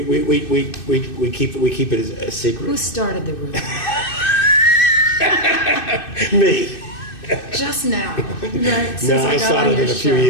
keep it a secret. Who started the rumor? Me. Just now, right? No, I started it a few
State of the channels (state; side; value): late; right; 2.6 ms